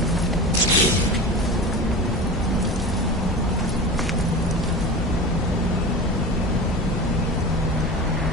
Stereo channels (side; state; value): both; normal; correlation 0.31